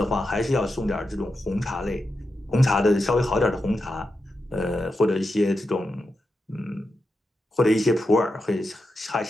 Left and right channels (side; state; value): both; normal; correlation 0.88